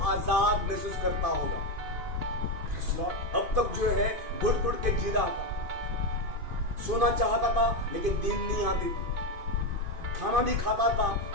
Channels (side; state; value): left; late; 2.5 ms